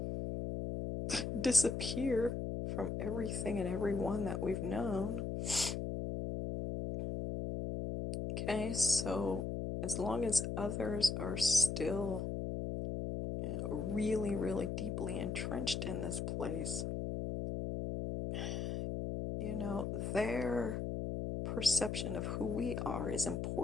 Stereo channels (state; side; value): noise; left; hum, 2 dB below the sound